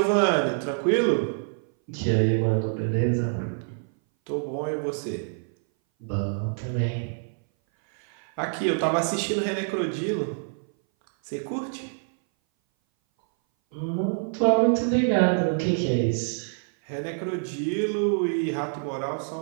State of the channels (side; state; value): left; silent; 59 dB below the other